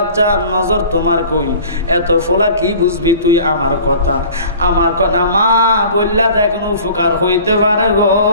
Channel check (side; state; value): both; inverted; correlation -0.45